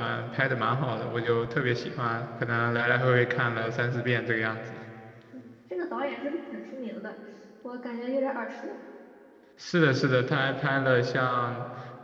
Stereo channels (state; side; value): identical; both; correlation 1.00